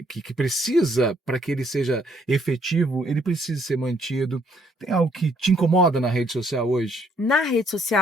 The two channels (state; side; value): normal; both; correlation 0.67